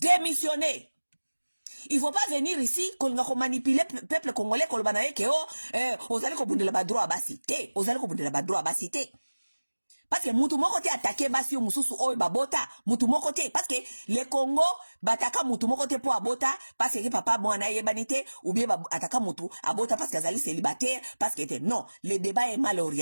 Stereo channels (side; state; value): both; inverted; correlation -1.00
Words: Il faut pas venir ici qu'on va manipuler peuple congolais kolobana ke ozali ko bundela ba droit basité, ozali ko bundela ba droit basité. Parce que mutu moko te attaquer basi yo mususu oyo babota, mutu moko te parce que le Congo bataka mutu moko te po abota parce que papa mwana yebanite ou bien ataka mutu abota parce que azali célibataire parce que non, le débat est mal